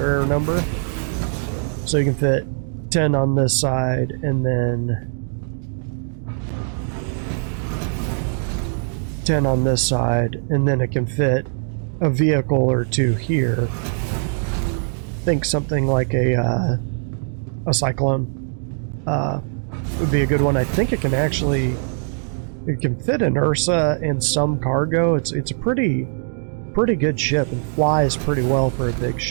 number. So you can fit 10 on this side, and then 10 on this side, and then it can fit a vehicle or 2 here. Think something like a Cyclone would be a good one. I think it can actually, it can fit an Ursa and some cargo. It's a pretty good ship and flies pretty well for a big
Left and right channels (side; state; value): left; silent; 65 dB below the other